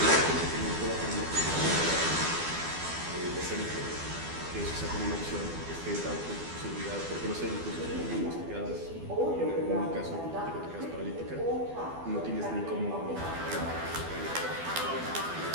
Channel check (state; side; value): late; left; 12 ms